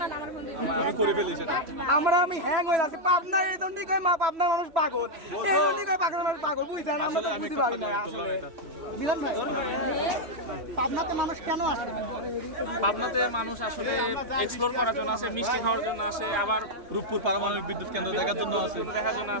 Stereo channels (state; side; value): late; left; 3.0 ms